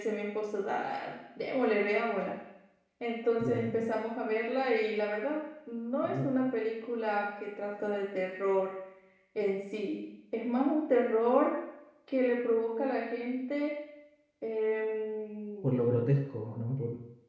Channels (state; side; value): identical; both; correlation 1.00